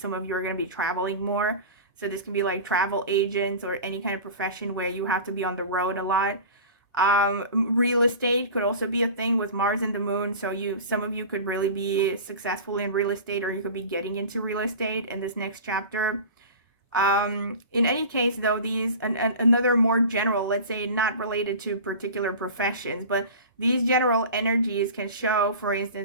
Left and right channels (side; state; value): both; inverted; correlation -0.35